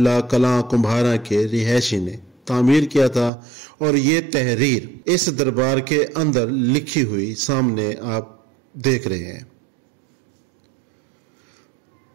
कलां कुम्हारा के रिहायशी ने तामीर किया था, और ये तहरीर इस दरबार के अंदर लिखी हुई सामने आप देख रहे हैं।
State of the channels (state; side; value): drops out; left; at 3.3 s